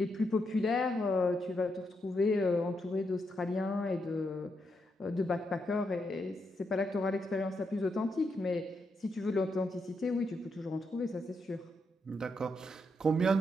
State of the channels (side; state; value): both; normal; correlation 0.81